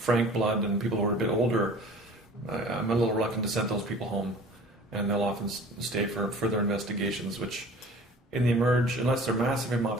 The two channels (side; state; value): both; normal; correlation 0.45